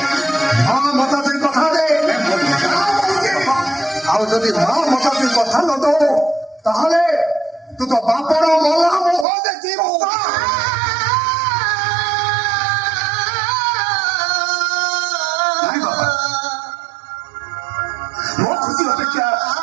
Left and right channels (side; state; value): left; drops out; at 9.2 s